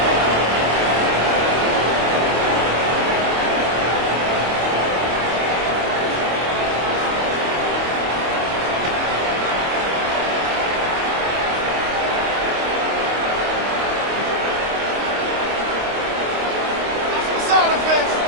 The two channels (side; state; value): left; late; 25 ms